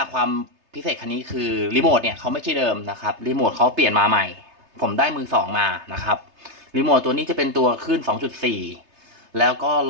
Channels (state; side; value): late; left; 3.3 ms